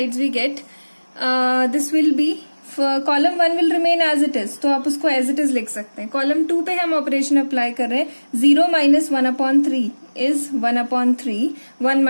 we get this will be column 1 will remain as it is. तो आप उसको एज इट इज लिख सकते हैं. कॉलम 2 पे हम operation apply कर रहे हैं. 0 माइनस 1/3 इज 1/3. 1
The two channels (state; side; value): inverted; both; correlation -1.00